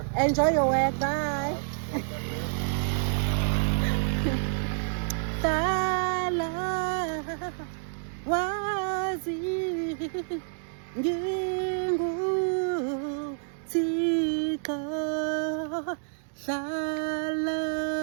Enjoy your work. Bye. Sala wazi ngingu tika sala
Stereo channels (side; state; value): left; silent; digital silence